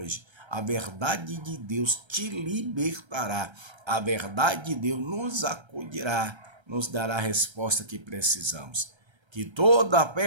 A verdade de Deus te libertará. A verdade de Deus nos acudirá, nos dará a resposta que precisamos. Que toda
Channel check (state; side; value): late; left; 1.3 ms